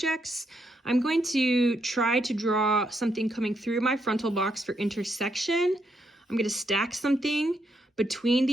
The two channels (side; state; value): both; normal; correlation 0.79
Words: I'm going to try to draw something coming through my frontal box for intersection. I'm going to stack something between